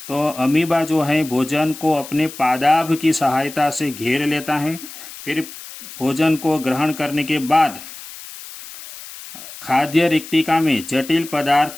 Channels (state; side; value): noise; left; hiss, 14 dB below the sound